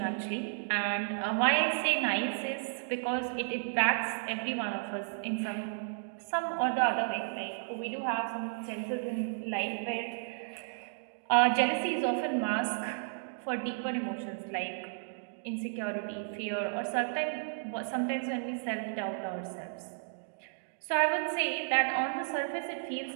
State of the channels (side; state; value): left; silent; digital silence